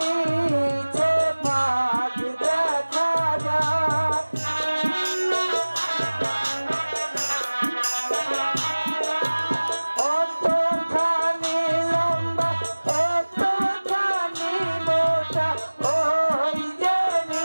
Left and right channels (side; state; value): both; inverted; correlation -1.00